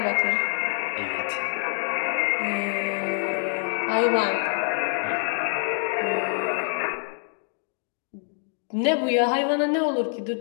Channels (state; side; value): silent; right; 61 dB below the other